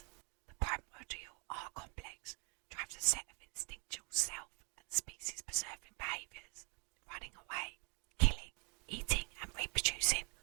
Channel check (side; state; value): left; quieter; 33.1 dB